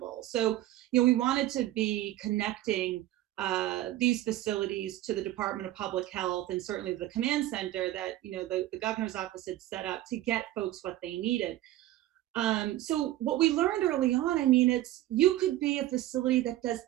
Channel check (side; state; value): left; quieter; 14.8 dB